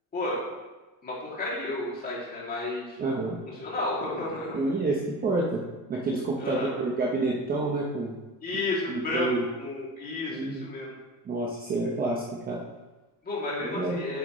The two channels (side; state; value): both; normal; correlation 0.33